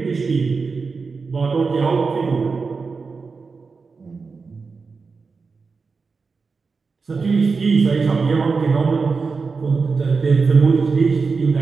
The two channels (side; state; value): left; quieter; 4.7 dB